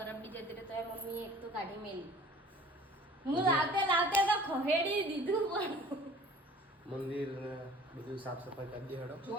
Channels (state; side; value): normal; both; correlation 0.48